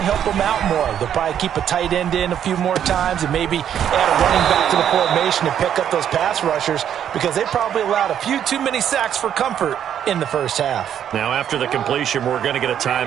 help them out more. They'll probably keep a tight end in a few more times and maybe add a running back to the formation and pick up those pass rushers, because they probably allowed a few too many sacks for comfort in the first half. Now, after the completion, we're going to get a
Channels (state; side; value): quieter; left; 9.5 dB